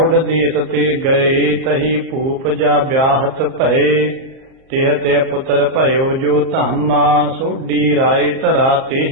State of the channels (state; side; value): late; left; 38 ms